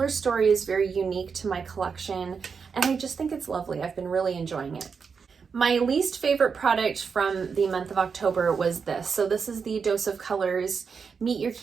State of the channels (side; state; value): left; quieter; 5.8 dB